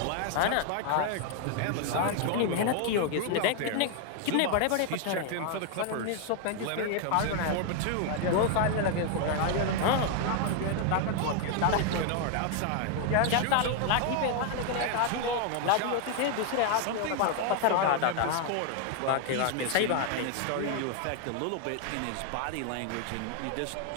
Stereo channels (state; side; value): different; both; correlation 0.00